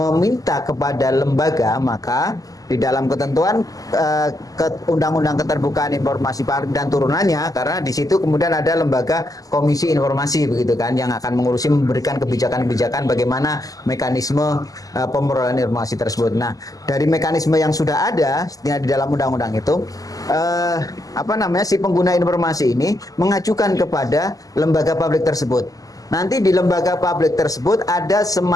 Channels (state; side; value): late; right; 0.17 ms